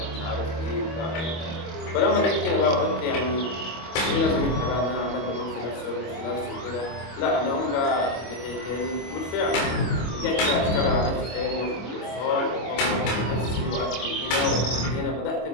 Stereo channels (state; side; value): late; right; 25 ms